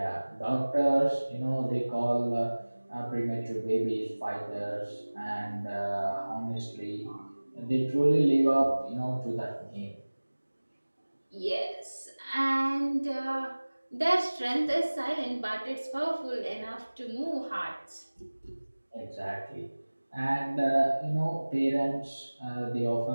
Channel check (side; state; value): both; inverted; correlation -1.00